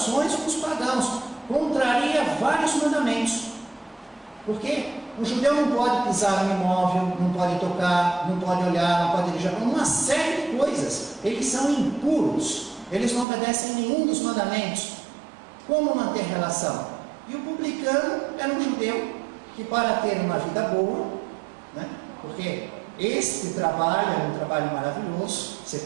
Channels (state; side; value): drops out; left; at 13.2 s